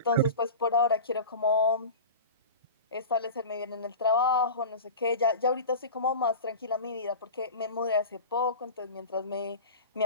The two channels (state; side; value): inverted; both; correlation -0.33